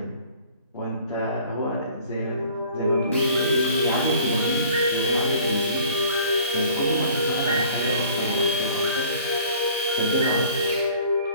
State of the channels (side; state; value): both; inverted; correlation -0.51